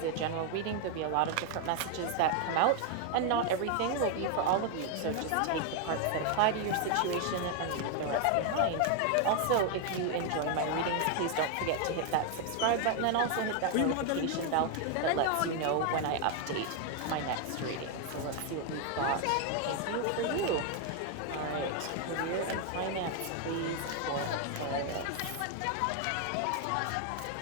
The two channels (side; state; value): both; different; correlation 0.00